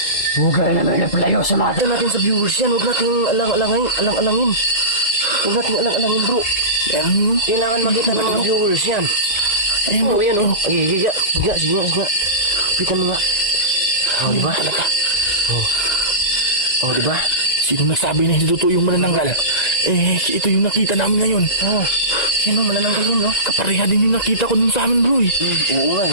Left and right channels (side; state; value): right; late; 2.0 ms